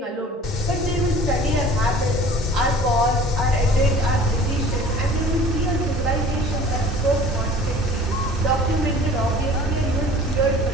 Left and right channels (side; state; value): both; normal; correlation 0.47